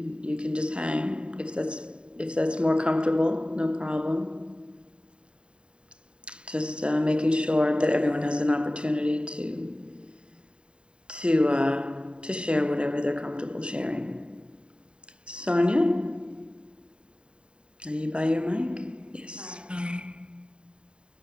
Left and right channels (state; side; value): late; left; 0.052 ms